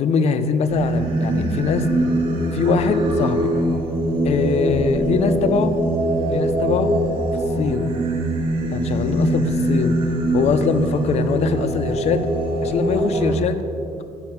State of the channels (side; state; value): both; normal; correlation 0.62